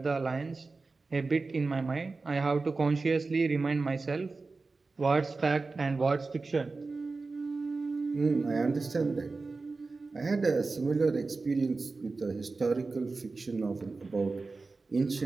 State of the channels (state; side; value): quieter; left; 3.9 dB